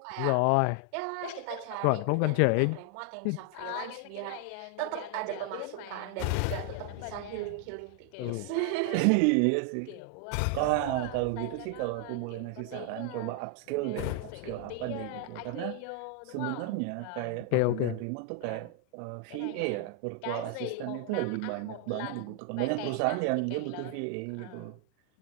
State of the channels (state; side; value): different; both; correlation 0.00